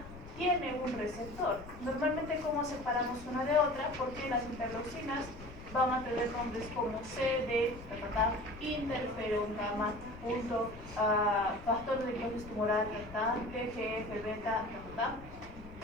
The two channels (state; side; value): noise; left; rumble, 15 dB below the sound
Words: tiene un receptor. Normalmente, ¿cómo separamos una de otra? Porque las interleucinas van a tener nombres como CD, interferón gamma, factor de dióxido tumoral, TGF, beta,